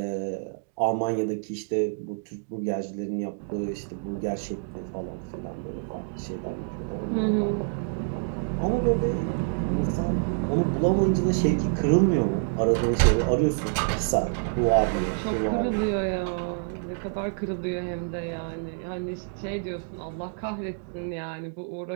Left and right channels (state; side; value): silent; left; digital silence